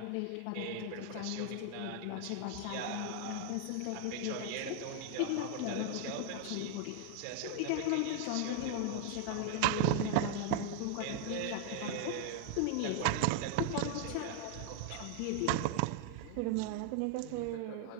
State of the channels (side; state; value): both; different; correlation 0.00